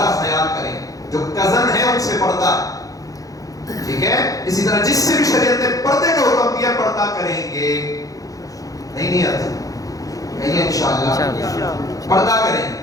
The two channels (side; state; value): right; late; 0.17 ms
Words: خیال کریں. جو کزن ہے ان سے پردہ, ٹھیک ہے. اسی طرح جس سے بھی شریعت نے پردے کا حکم دیا پردہ کریں گے. نہیں آتا نہیں انشاءاللہ پردہ